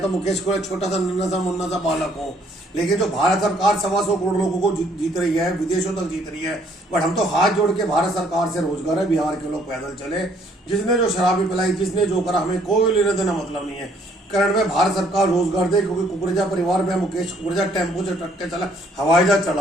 तो मुकेश को छोटा सा नन्ना सा मुन्ना सा बालक हूँ, लेकिन जो भारत सरकार 125 करोड़ लोगों को जीत रही है, विदेशों तक जीत रही है। बट हम तो हाथ जोड़ के भारत सरकार से रोजगार है, बिहार के लोग पैदल चले। जिसने जो शराबी पिलाई, जिसने जो करा, हमें कोई लेना देना मतलब नहीं है। करंट में भारत सरकार रोजगार दे, क्योंकि कुकरेजा परिवार में मुकेश कुकरेजा टेम्पो से ट्रक चला, हवाई जहाज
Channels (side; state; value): both; normal; correlation 0.64